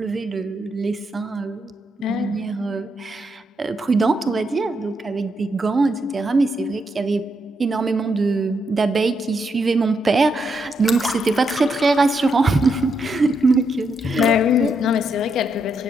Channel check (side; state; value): both; normal; correlation 0.80